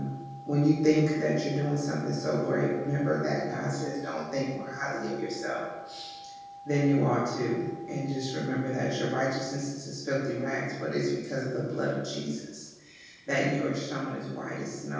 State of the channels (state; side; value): identical; both; correlation 1.00